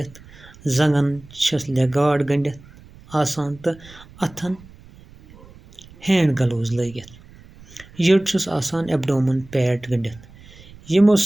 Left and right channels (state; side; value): noise; right; rumble, 22 dB below the sound